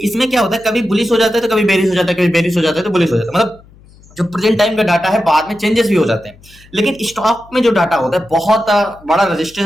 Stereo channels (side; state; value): left; noise; hum, 26 dB below the sound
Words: इसमें क्या होता है, कभी बुलिश हो जाता है तो कभी बेरिश हो जाता है, कभी बेरिश हो जाता है तो बुलिश हो जाता है। मतलब जो प्रेजेंट टाइम का डाटा है बाद में चेंजेस भी हो जाते हैं, लेकिन स्टॉक में जो डाटा होता है बहुत बड़ा